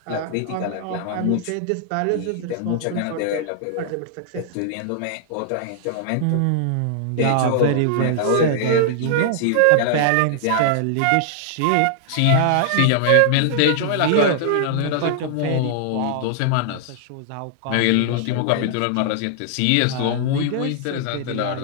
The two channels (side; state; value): both; different; correlation -0.01